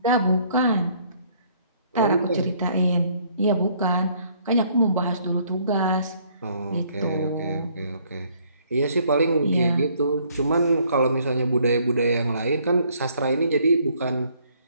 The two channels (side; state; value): both; inverted; correlation -0.64